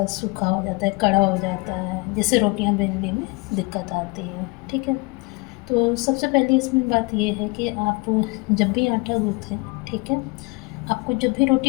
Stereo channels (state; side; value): quieter; right; 27.0 dB